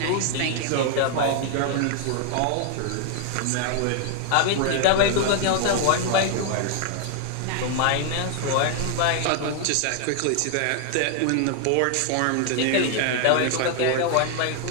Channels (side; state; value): both; different; correlation 0.00